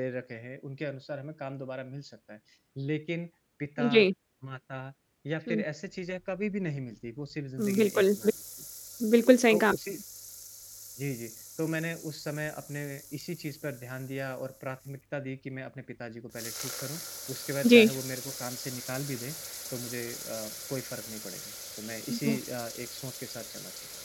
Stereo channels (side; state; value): both; identical; correlation 1.00